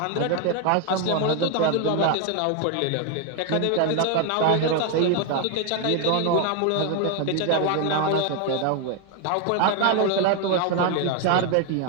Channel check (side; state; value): both; different; correlation 0.01